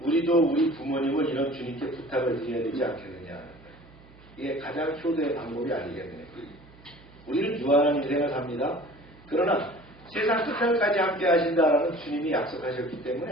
우리도 우리 부모님을 이런 주님께 부탁을 드려야 되지 않겠느냐. 이게 가장 효도의 방법이 아니겠느냐. 우리는 유한한 인생을 삽니다. 그러나 세상 끝날까지 함께 하신다라는 주님이 약속하셨기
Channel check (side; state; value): right; noise; hum, 23 dB below the sound